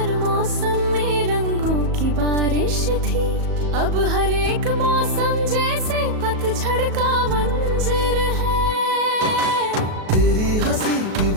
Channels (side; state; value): left; late; 37 ms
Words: मौसम में रंगों की बारिश थी, अब हर एक मौसम जैसे पतझड़ का मंजर है। तेरी हंसी की